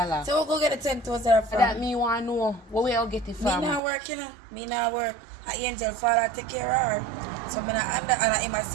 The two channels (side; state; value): left; drops out; at 3.8 s